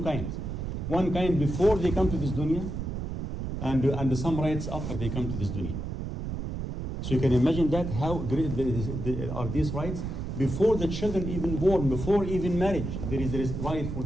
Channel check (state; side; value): noise; right; rumble, 4 dB below the sound